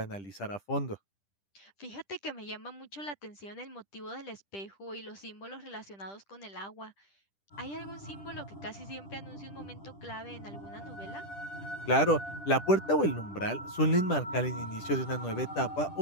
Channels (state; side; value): late; right; 10 ms